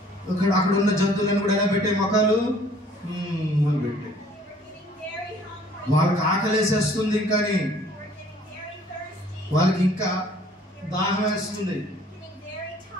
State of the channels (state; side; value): normal; both; correlation 0.56